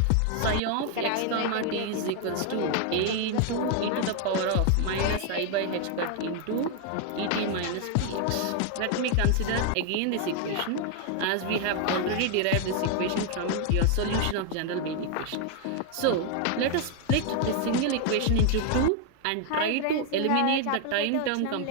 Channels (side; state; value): both; different; correlation 0.00